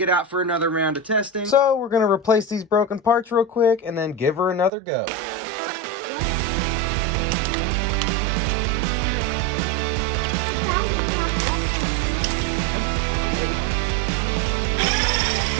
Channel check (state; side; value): drops out; left; at 4.7 s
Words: it out for another round of testing. So we're gonna replace these broken parts real quick and then give her another go.